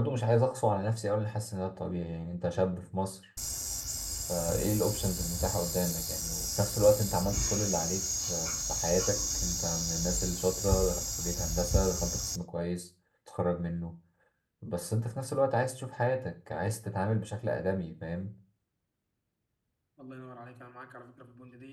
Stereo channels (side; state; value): both; identical; correlation 1.00